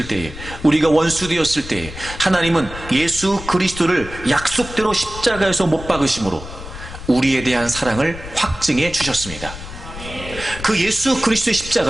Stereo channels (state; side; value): noise; left; rumble, 12 dB below the sound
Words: 때에, 우리가 원수 되었을 때에 하나님은 예수 그리스도를 약속대로 십자가에서 못 박으심으로 우리에 대한 사랑을 확증해 주셨습니다. 그 예수 그리스도의